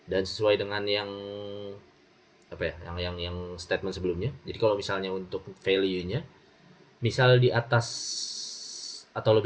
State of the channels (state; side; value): identical; both; correlation 1.00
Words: Dan sesuai dengan yang yang statement sebelumnya. Jadi kalau misalnya untuk value-nya, misal di atas atau